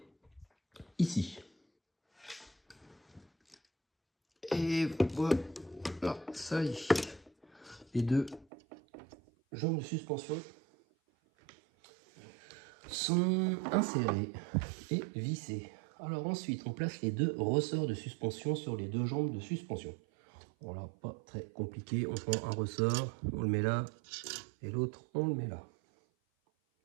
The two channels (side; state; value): left; drops out; at 8.5 s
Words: ici. Et voilà, ça y est. Les deux jambes de suspension sont insérées et vissées. Alors ensuite, on place les deux ressorts de suspension sur les deux jambes de suspension. Voilà, pas très compliqué. On prend un ressort, on le met là, et l'autre, on le met là.